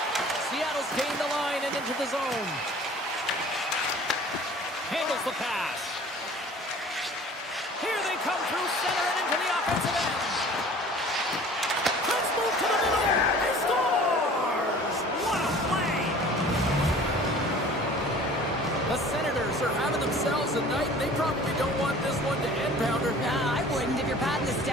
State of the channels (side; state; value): both; normal; correlation 0.47